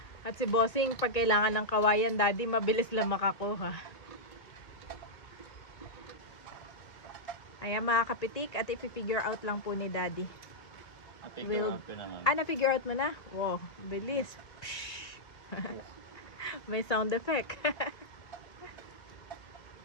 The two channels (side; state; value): right; late; 1.9 ms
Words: At si Bossing, pag kailangan ng kawayan, Daddy, mabilis lang makakuha. Ayan, mga kapitik, at i-figure out lang po ni Daddy. Figure out ko naman. Na-figure out mo na? Wow, bilis. May sound effect.